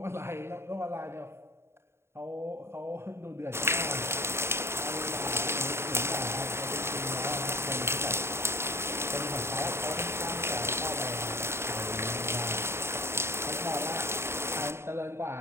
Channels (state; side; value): late; left; 0.12 ms